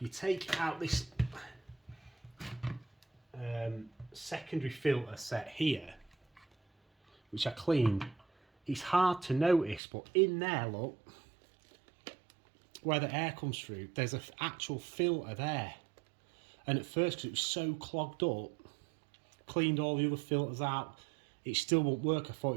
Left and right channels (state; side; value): drops out; left; at 9.8 s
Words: you take out this secondary filter set here, which I cleaned, it's hard to notice, but in there, look, where the air comes through, there's an actual filter there. And at first, because it was so clogged up, cleaned all the other filters out, it still won't work. I thought